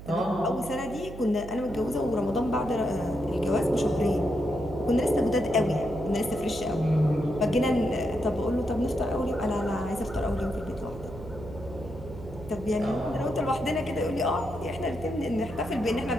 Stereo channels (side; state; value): right; noise; hum, 13 dB below the sound